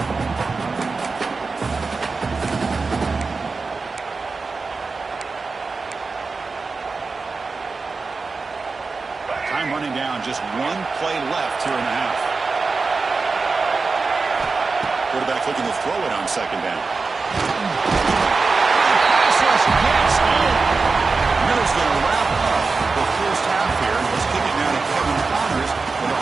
Time running down. Just one play left here in the half. Quarterback looking to throw it on second down. Pass rush gets in. Miller's going to wrap up the first half here. Let's kick it now to Kevin Connors with a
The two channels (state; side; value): quieter; left; 4.2 dB